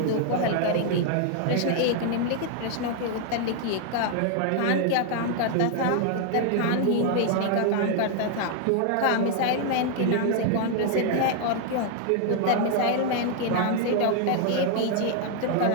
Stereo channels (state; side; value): different; both; correlation 0.00